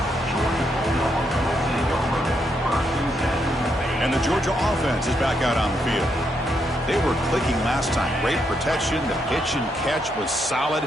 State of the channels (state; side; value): normal; both; correlation 0.78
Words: And the Georgia offense is back out on the field. They were clicking last time. Great protection. The pitch and catch was